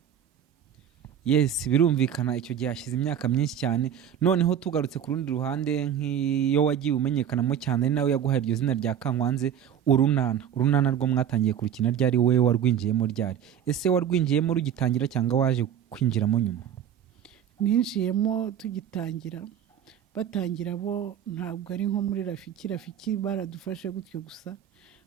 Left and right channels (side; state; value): left; quieter; 9.3 dB